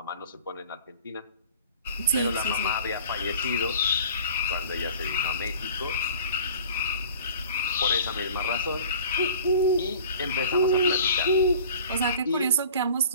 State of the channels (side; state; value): both; inverted; correlation -0.45